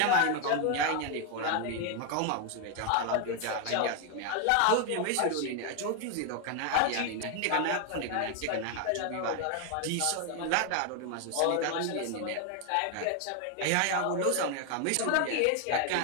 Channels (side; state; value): both; different; correlation 0.01